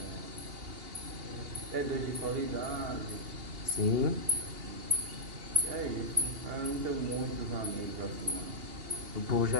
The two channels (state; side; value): late; left; 2.8 ms